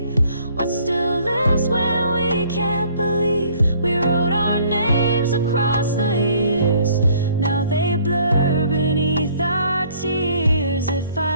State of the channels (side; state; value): both; inverted; correlation -0.59